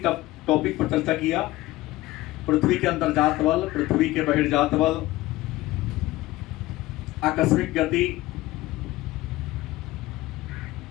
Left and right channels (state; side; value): quieter; right; 17.8 dB